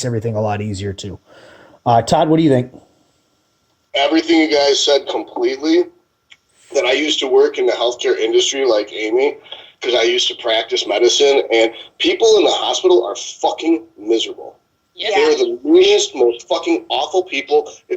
everything a lot easier too. Todd, what do you think? Everything you guys said completely. That I used to work in the healthcare industry like Amy, because I used to practice medicine, and people in the hospital are fucking miserable. Yeah. They're the meanest, most fucking awful people.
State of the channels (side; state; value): both; identical; correlation 1.00